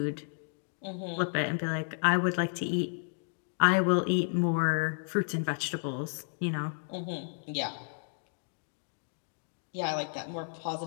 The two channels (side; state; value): right; silent; 56 dB below the other